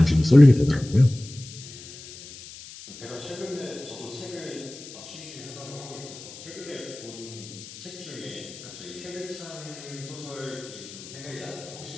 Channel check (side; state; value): left; noise; hiss, 15 dB below the sound